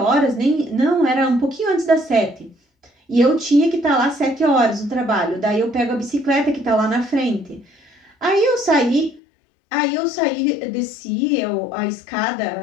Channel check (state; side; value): drops out; right; at 9.2 s